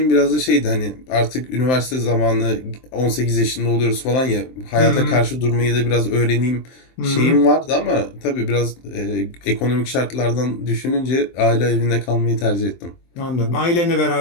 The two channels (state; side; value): late; right; 23 ms